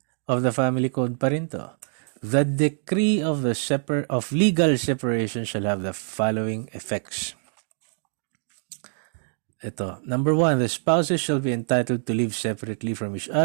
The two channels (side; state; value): left; silent; 62 dB below the other